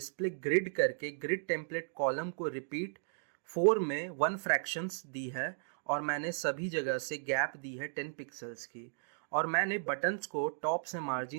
ग्रिड करके ग्रिड टेम्पलेट कॉलम को रिपीट 4 में 1 फ्रैक्शंस दी है, और मैंने सभी जगह से गैप दी है 10 पिक्सल्स की, और मैंने बटन्स को टॉप से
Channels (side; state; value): left; silent; digital silence